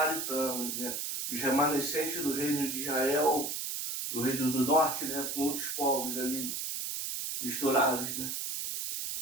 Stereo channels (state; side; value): noise; right; hiss, 3 dB below the sound